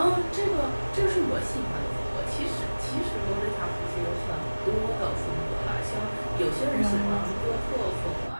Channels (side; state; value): both; inverted; correlation -1.00